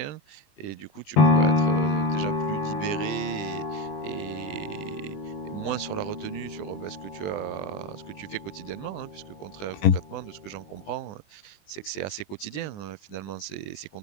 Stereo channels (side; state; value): right; late; 20 ms